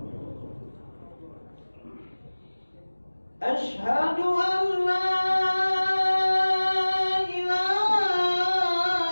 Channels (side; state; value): both; inverted; correlation -1.00